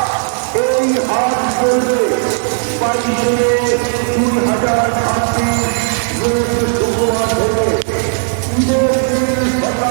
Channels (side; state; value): left; silent; digital silence